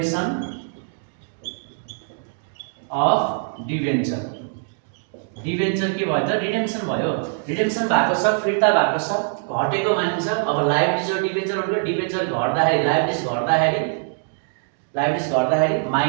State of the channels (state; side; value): silent; left; 64 dB below the other